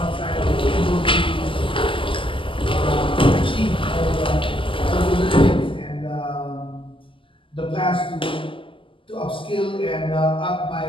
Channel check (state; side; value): late; right; 0.25 ms